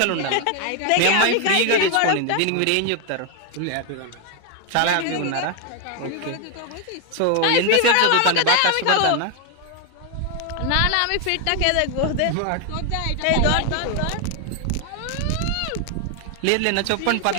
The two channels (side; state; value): both; different; correlation 0.00